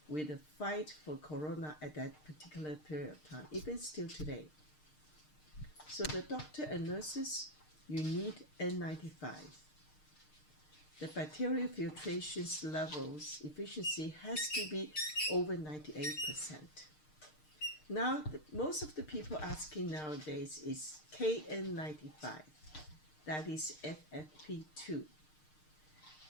with the fight for corona at that particular period of time, even still today. So the doctor and nurses, you need N95. The bacterial filtration levels efficiency has to be over 98%. Now, most of the people asking nowadays is KN95, that is FFP2.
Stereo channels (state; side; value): late; right; 6.6 ms